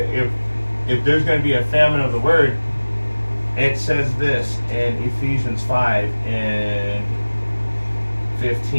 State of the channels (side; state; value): both; inverted; correlation -1.00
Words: there's gonna be a famine of the word, it says this in Ephesians 5 and